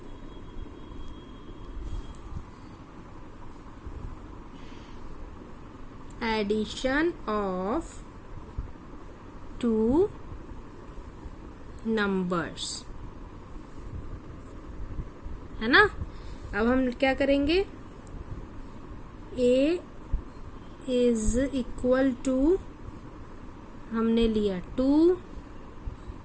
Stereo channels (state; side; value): identical; both; correlation 1.00